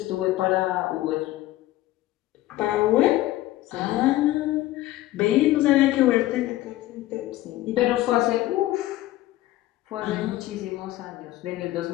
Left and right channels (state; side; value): quieter; right; 16.1 dB